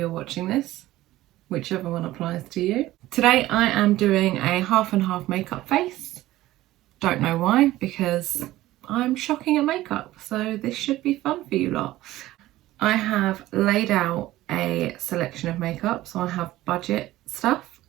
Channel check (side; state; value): left; quieter; 16.1 dB